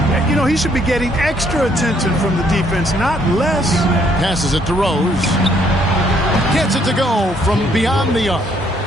You know, he should be getting extra attention from the defense, not less. Passes it to Rose. Gets it to go from beyond the arc.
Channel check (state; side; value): normal; both; correlation 0.67